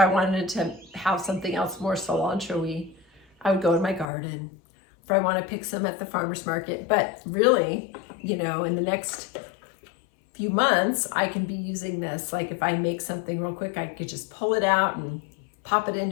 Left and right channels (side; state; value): right; drops out; at 4.0 s